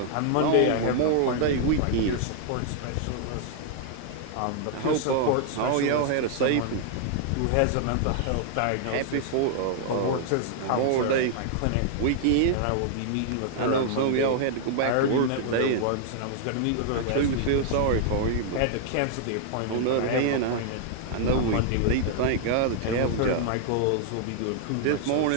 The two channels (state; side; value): different; both; correlation -0.01